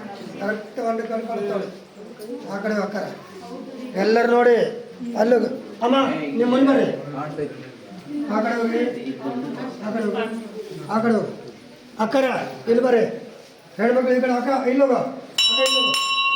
ಕರೆಕ್ಟ್ ಒಂದು ಕಡೆ ಬರ್ತಾವಳೆ. ಆ ಕಡೆ ಅಕ್ಕರ ಎಲ್ಲರೂ ನೋಡಿ. ಅಲ್ಲೂ ಅಮ್ಮ ನಿಮ್ಮ ಮುಂದೆ ಬರ್ರಿ. ಆ ಕಡೆ ಹೋಗಿ, ಆ ಕಡೆ ಹೋಗಿ, ಆ ಕಡೆ ಹೋಗಿ. ಅಕ್ಕರ ಇಲ್ಲಿ ಬರ್ರಿ. ಹೆಣ್ಮಕ್ಳು ಈ ಕಡೆ ಅಕ್ಕ ಇಲ್ಲೋಗ,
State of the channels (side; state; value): both; identical; correlation 1.00